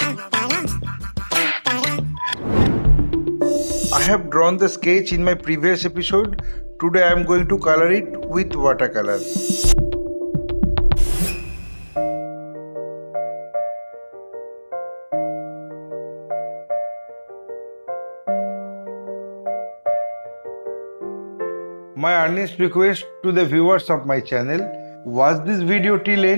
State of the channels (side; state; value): both; inverted; correlation -1.00